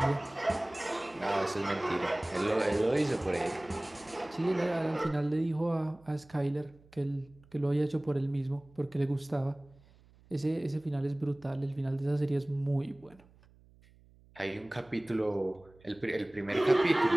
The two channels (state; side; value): noise; right; hum, 27 dB below the sound